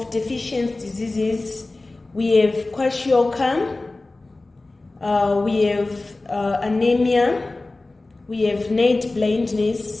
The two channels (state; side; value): quieter; right; 3.1 dB